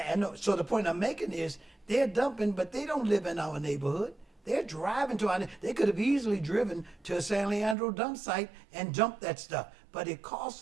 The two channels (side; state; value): left; drops out; at 7.8 s